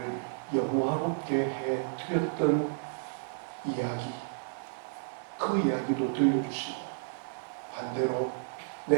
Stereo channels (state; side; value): silent; left; digital silence